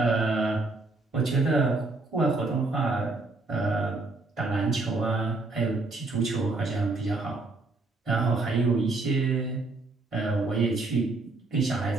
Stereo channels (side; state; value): left; quieter; 3.4 dB